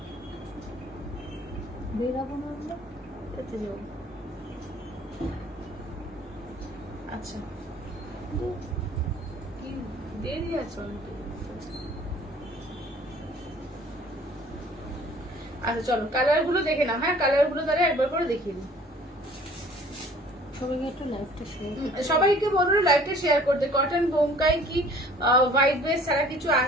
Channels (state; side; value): normal; both; correlation 0.52